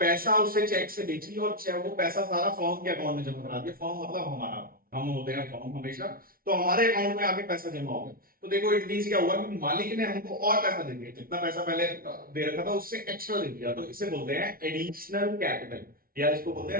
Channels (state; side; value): late; left; 0.43 ms